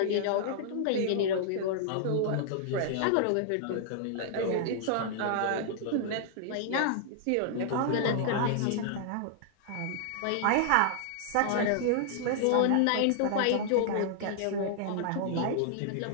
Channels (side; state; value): both; different; correlation -0.01